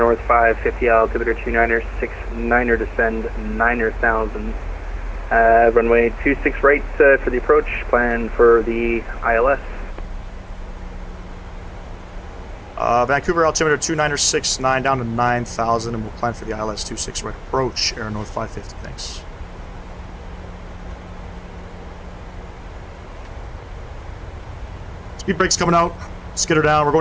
550, altimeter 2969er, descend 9,000. Runway 26 right for the approach, plan for the ILS. Vancouver altimeter 2969 down to 9,000, and we'll plan for the ILS 26 right approach, Air North 550. Thanks. Speed brake's coming out. Skitter down. We're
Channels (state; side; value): identical; both; correlation 1.00